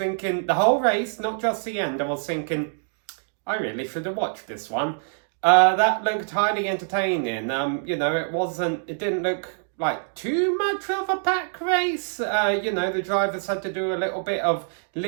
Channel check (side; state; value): left; silent; digital silence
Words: the whole race, not just the end, I was thinking, I really should have watched this one. That looked highly entertaining. It didn't look like too much of a pack race. The drivers had to do a little bit of